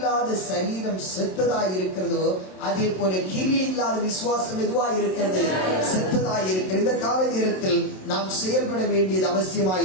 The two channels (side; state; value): right; late; 27 ms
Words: சரீரம் செத்ததாய் இருக்கிறதோ அதே போல கிரியை இல்லாத விசுவாசம் எதுவாய் இருக்கிறது? செத்ததாய் இருக்கிறது. இந்த கால நேரத்தில் நாம் செயல்பட வேண்டியது அவசியமாய்